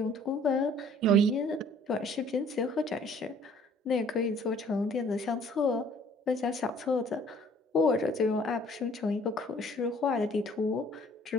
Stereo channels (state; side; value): normal; both; correlation 0.56